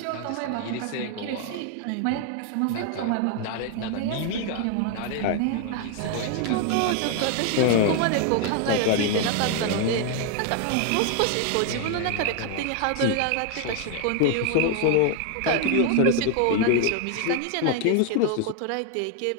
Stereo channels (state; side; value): different; both; correlation 0.00